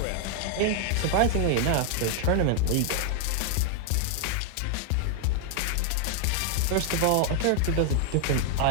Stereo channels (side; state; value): both; different; correlation 0.00